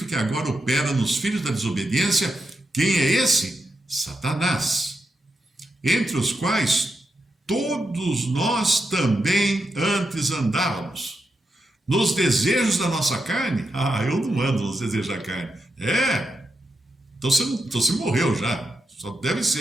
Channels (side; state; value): both; normal; correlation 0.85